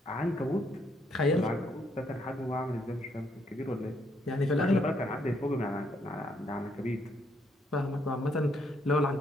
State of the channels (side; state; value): both; normal; correlation 0.72